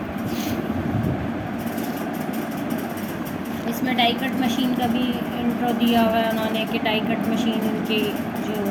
इसमें डाई कट मशीन का भी इंट्रो दिया हुआ है उन्होंने कि डाई कट मशीन उनकी जो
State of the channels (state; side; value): identical; both; correlation 1.00